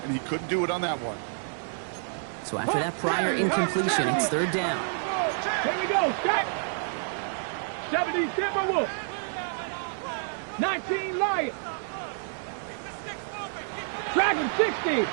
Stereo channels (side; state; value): left; silent; 59 dB below the other